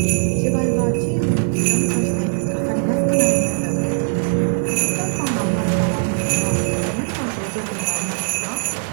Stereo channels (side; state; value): left; silent; digital silence